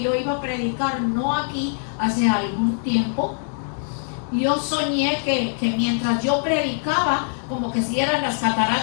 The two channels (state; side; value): silent; right; digital silence